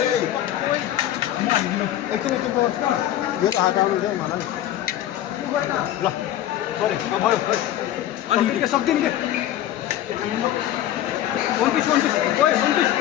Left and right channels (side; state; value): right; quieter; 12.5 dB